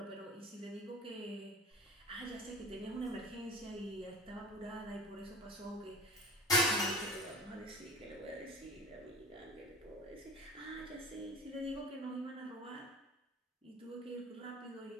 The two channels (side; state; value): both; normal; correlation 0.38